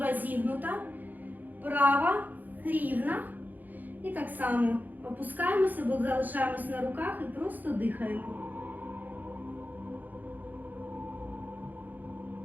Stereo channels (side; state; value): left; late; 0.084 ms